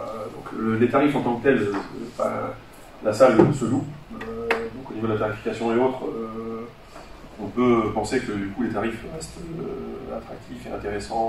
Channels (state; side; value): identical; both; correlation 1.00